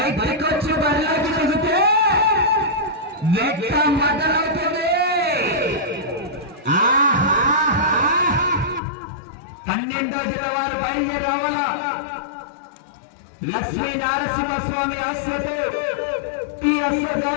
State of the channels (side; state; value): right; drops out; at 8.8 s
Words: వచ్చి బరిలోకి దిగితే వేట మొదలవుతుంది. 12వ జిల్లా బయలుదేరావాలా లక్ష్మీ నారసింహస్వామి ఆశ్రతో టీఎస్ఆర్